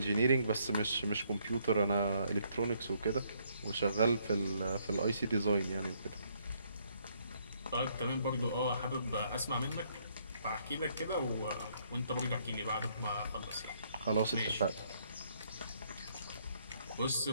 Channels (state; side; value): inverted; both; correlation -0.70